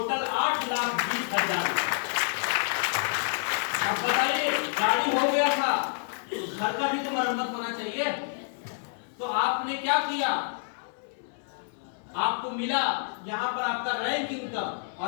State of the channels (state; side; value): silent; right; 59 dB below the other